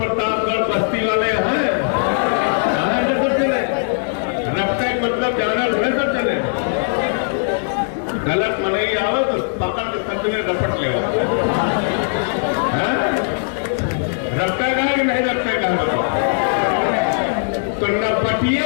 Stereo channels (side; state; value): right; silent; digital silence